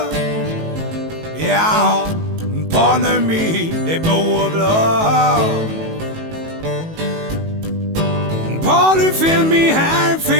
Ja, pollen min det blå blå. Pollen film i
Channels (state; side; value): late; left; 18 ms